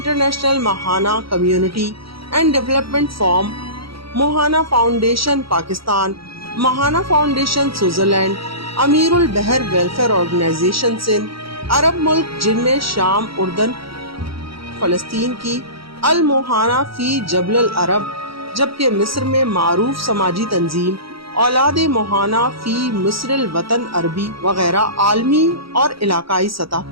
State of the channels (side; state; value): left; late; 0.75 ms